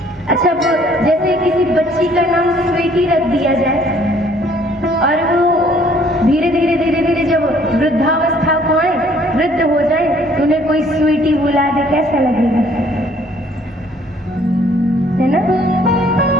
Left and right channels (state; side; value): normal; both; correlation 0.60